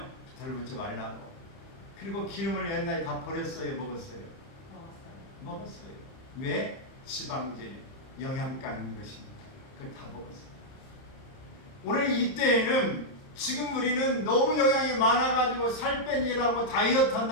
들붙지 말라고. 그리고 기름을 옛날에 다 버렸어요, 먹었어요? 먹었어요. 왜? 지방질, 영양가 있는 것입니다. 그걸 다 먹었어요. 오늘 이때에는 지금 우리는 너무 영양이 많아가지고 살 빼니라고 다이어트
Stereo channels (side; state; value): right; late; 30 ms